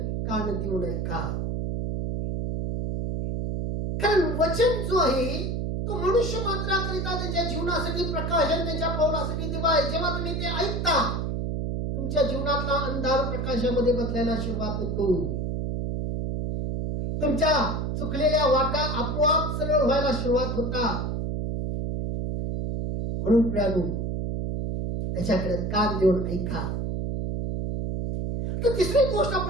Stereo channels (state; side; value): noise; right; hum, 2 dB below the sound